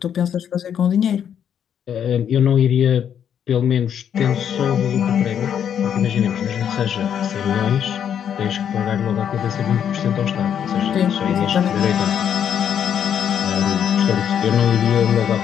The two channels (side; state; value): right; quieter; 8.8 dB